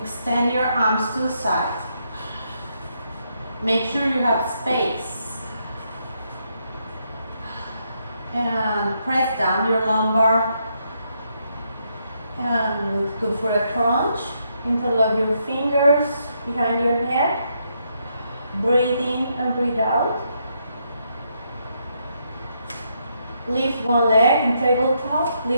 your arms to the side. Make sure you have space. And press down your lumbar. And go for a crunch. Interlock your fingers behind your head. Breathe in and breathe out. Lift one leg in tabletop.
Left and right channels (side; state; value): both; inverted; correlation -0.77